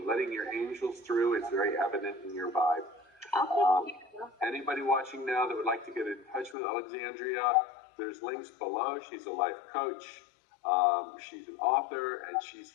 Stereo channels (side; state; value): right; drops out; at 6.6 s